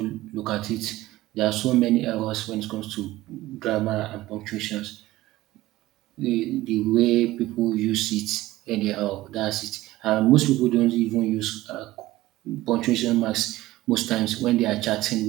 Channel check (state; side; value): quieter; left; 17.1 dB